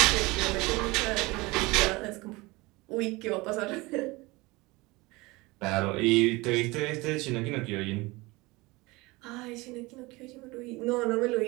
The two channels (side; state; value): left; quieter; 22.9 dB